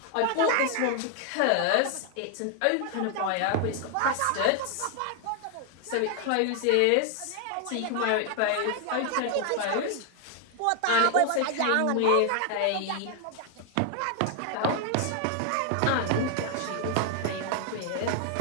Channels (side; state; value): both; different; correlation 0.00